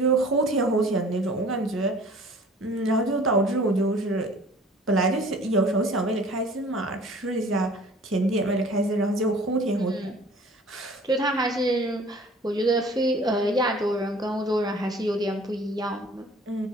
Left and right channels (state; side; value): normal; both; correlation 0.49